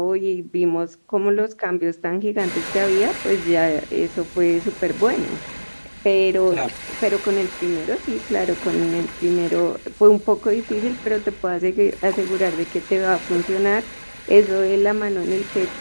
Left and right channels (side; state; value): both; inverted; correlation -1.00